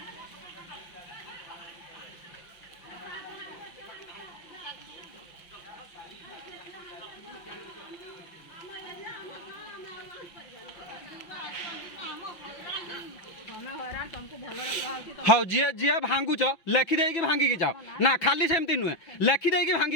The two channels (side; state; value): right; late; 5.8 ms